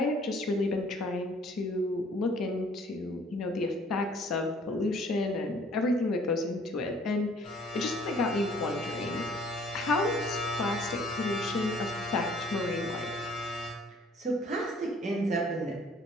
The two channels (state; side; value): normal; both; correlation 0.57